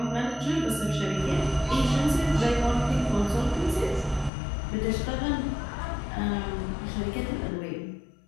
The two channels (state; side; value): drops out; right; at 4.3 s